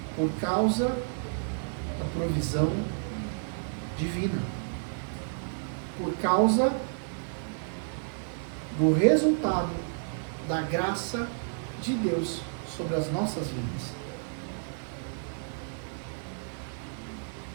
por causa da provisão divina, por causa do resultado da graça de Deus sobre as nossas vidas.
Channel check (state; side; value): silent; left; digital silence